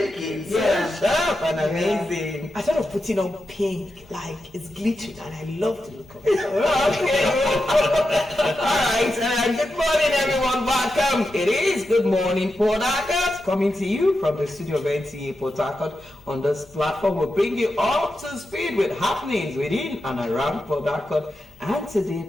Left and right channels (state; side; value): noise; left; hum, 29 dB below the sound